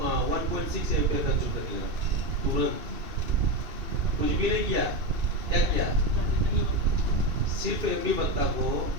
एम्पियर कंज्यूम करने लगा तुरंत। कुछ भी नहीं किया, क्या किया, सिर्फ एमबी पत्ता को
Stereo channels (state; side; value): late; left; 2.7 ms